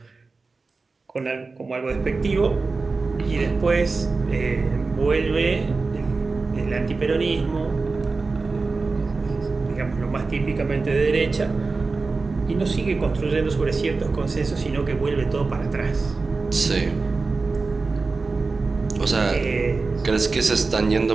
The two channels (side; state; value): left; quieter; 4.0 dB